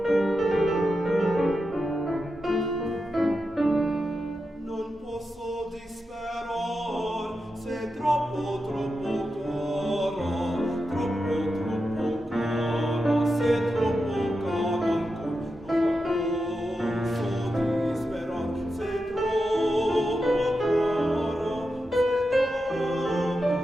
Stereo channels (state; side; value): normal; both; correlation 0.89